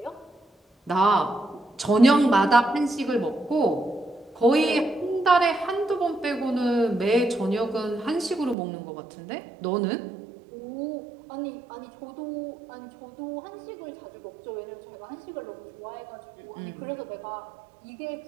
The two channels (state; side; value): drops out; left; at 8.6 s